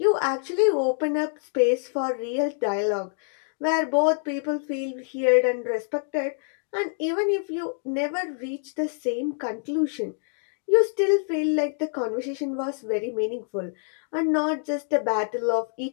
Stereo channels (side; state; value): right; silent; 61 dB below the other